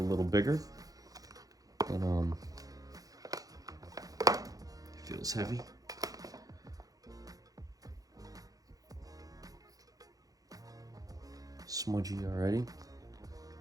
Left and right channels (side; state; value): left; late; 0.17 ms